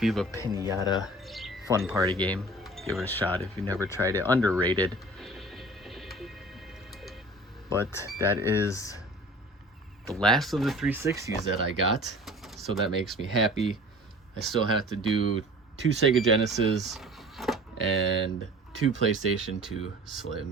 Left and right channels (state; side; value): normal; both; correlation 0.44